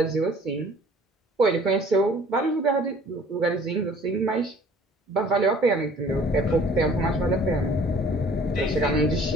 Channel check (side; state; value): both; normal; correlation 0.53